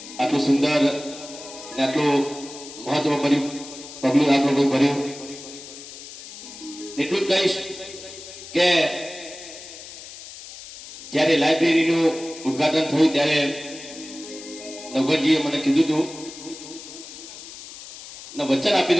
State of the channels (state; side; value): noise; left; hiss, 14 dB below the sound